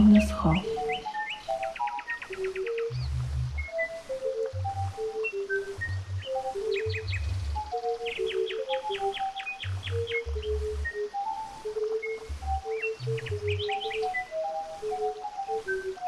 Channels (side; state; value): both; identical; correlation 1.00